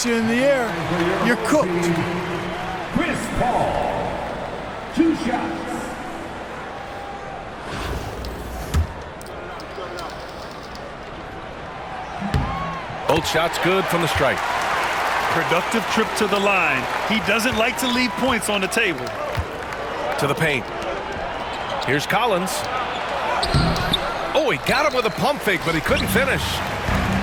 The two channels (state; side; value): identical; both; correlation 1.00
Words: you in the air, you're cooked. Chris Paul, 2 shots. Both shots good from the strike. Productive trip to the line. He doesn't like to leave points on the table. To the paint. Here's Collins. Oh, he got him with a pump fake, but he couldn't finish.